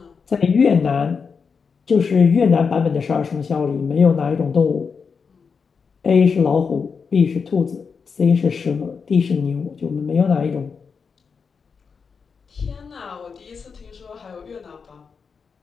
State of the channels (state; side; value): quieter; right; 5.6 dB